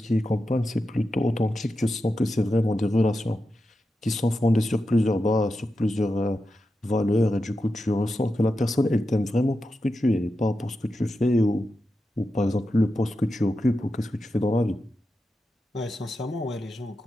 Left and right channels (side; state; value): both; normal; correlation 0.89